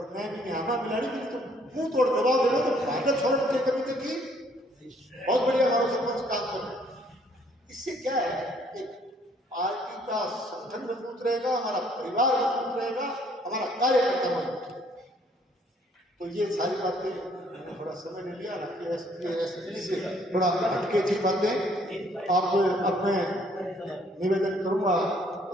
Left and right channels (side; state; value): both; normal; correlation 0.63